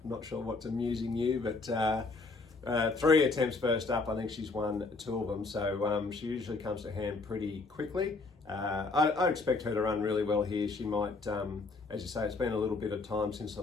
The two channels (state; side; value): quieter; right; 3.8 dB